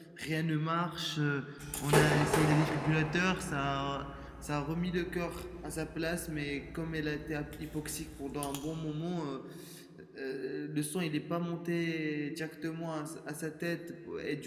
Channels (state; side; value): identical; both; correlation 1.00